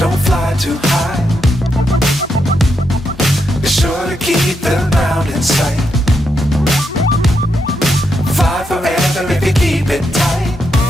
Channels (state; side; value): normal; both; correlation 0.82